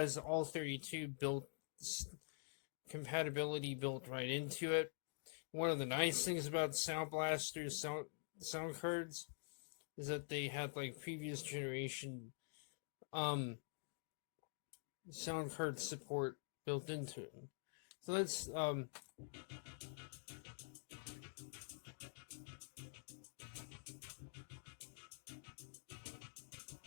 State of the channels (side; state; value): right; silent; digital silence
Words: all 32 built compatibility built right into it. One of the nice things about Sound Blaster's sound cards is that they had like previous generation sound card support built into it. So let's